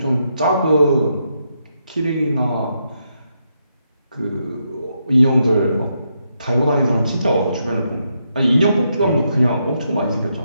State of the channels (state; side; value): inverted; both; correlation -0.80